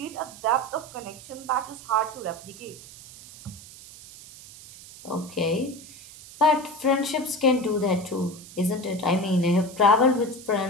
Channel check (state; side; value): noise; right; hiss, 18 dB below the sound